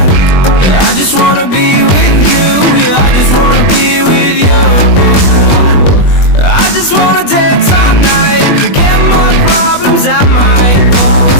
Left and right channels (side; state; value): right; late; 21 ms